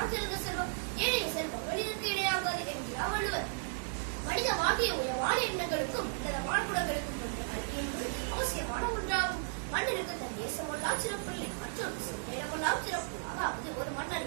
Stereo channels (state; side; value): silent; left; digital silence